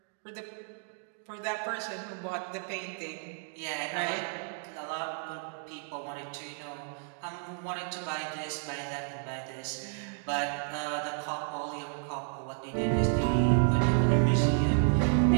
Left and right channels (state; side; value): silent; left; 56 dB below the other